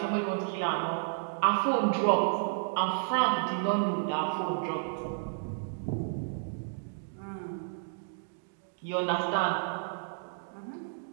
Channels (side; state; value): left; silent; digital silence